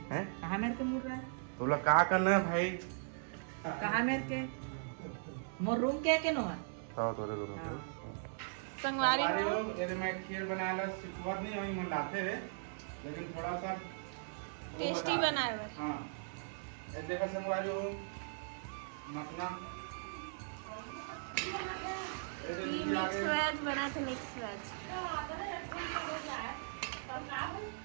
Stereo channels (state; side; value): silent; left; digital silence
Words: है। कहाँ मेरे के मुड़ रहे हैं? तोला का करना है भाई? कहाँ मेरे के मोर रूम के नो है? ताओ तोरे रूम पे संगवारी हो ये मैं खीर बनाला सिखवत नहीं हई मन लाते रे, लेकिन थोड़ा सा टेस्टी बनाए हुए। हां ये देखा संगवारी हो मखना मिक्स वेज बना था, मिक्स वेज।